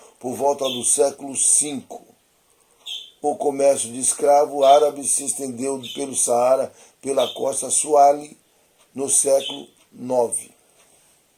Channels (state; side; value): identical; both; correlation 1.00